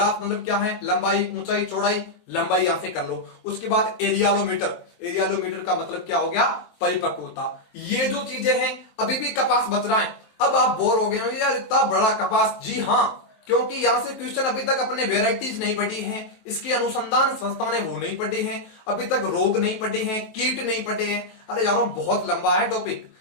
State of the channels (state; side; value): late; right; 23 ms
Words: मतलब क्या है, लंबाई, ऊंचाई, चौड़ाई, लंबाई यहां से कर लो। उसके बाद एरियालोमीटर, एरियालोमीटर का मतलब क्या हो गया, परिपक्वता। ये जो चीजें हैं, अभी भी कपास बच रहा है। अब आप बोर हो गए हो यार इतना बड़ा कपास, जी हाँ, क्योंकि यहां से क्वेश्चन अभी तक अपने वेराइटीज नहीं पढ़ी हैं, इसकी अनुसंधान संस्था ने वो नहीं पढ़ी हैं, अभी तक रोग नहीं पढ़े हैं, कीट नहीं पढ़े हैं। अरे यारों बहुत लंबा है टॉपिक,